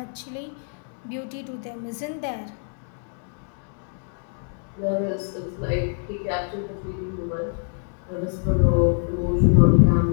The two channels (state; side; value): silent; right; 62 dB below the other